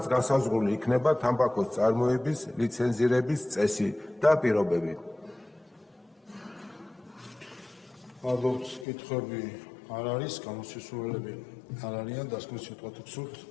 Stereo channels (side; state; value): right; drops out; at 8.8 s